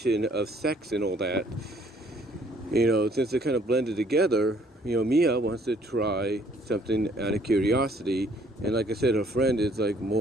of sex and all that, since they're kind of blended together, Mia wants to try something out of curiosity, and like I said, her friend is like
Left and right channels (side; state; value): both; normal; correlation 0.61